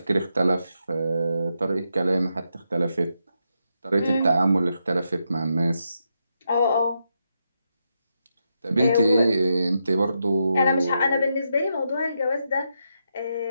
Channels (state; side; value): inverted; both; correlation -0.83